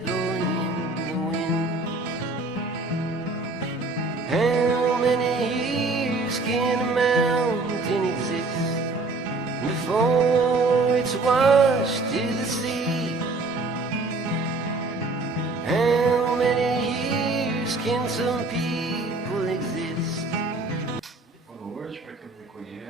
in the wind. How many years can a mountain exist before it's washed to the sea? How many years can some people exist? Boa noite, para quem não me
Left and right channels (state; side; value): quieter; left; 3.4 dB